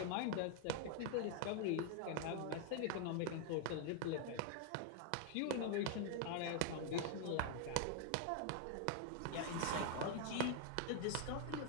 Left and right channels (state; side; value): different; both; correlation 0.00